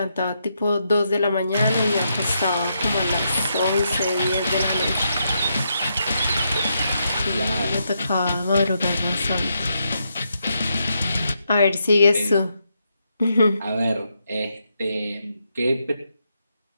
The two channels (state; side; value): inverted; both; correlation -0.81